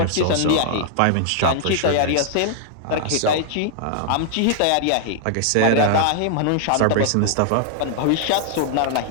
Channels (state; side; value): different; both; correlation 0.00